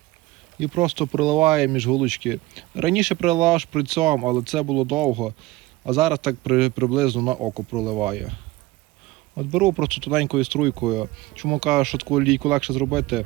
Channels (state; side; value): quieter; left; 19.1 dB